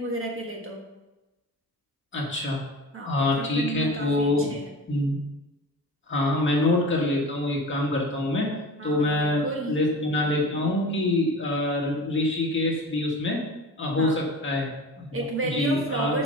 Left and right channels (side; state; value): both; normal; correlation 0.36